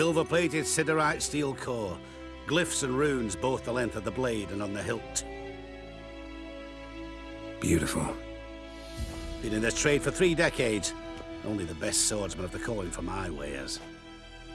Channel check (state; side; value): identical; both; correlation 1.00